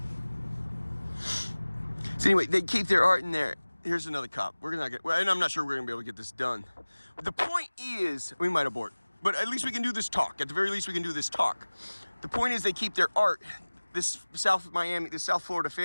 So anyway, they keep their art in there. Here's another cop. We're not gonna, well, and I'm not sure we're gonna be able to get this done. But the point is, we might abort, but at least we can do this talk. At the very least, we can do this talk. The point is, they keep their art. This South Miami, this South Florida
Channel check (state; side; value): inverted; both; correlation -1.00